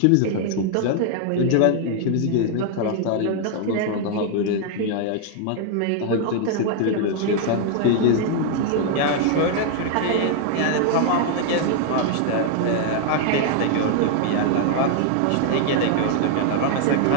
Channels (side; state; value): both; different; correlation 0.00